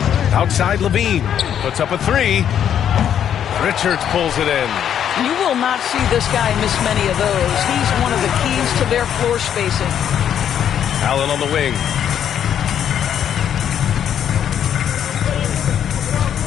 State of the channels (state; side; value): quieter; right; 9.3 dB